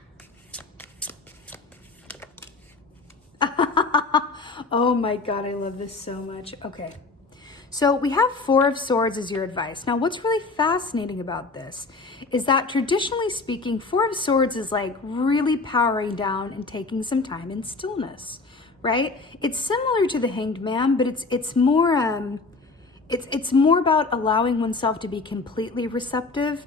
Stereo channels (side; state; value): right; quieter; 3.9 dB